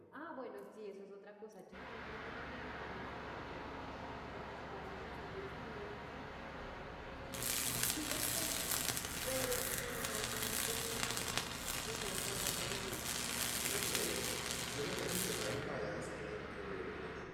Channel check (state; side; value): identical; both; correlation 1.00